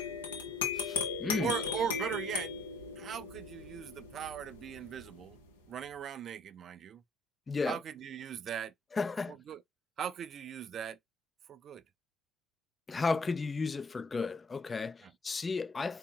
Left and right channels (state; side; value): normal; both; correlation 0.57